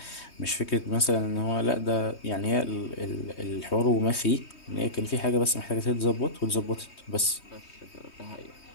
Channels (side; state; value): right; late; 3.2 ms